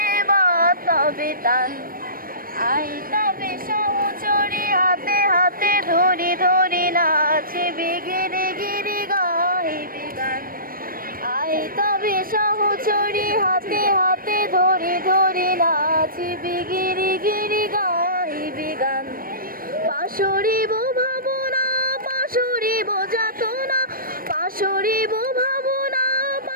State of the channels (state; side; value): late; left; 0.41 ms